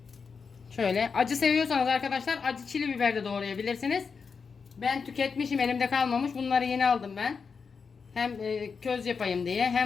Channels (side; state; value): right; quieter; 5.5 dB